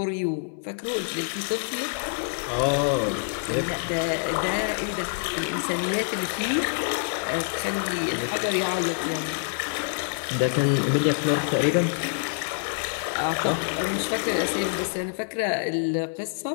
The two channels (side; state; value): right; silent; digital silence